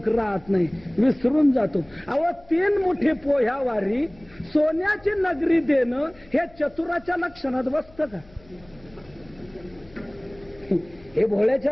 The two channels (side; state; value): left; noise; hum, 26 dB below the sound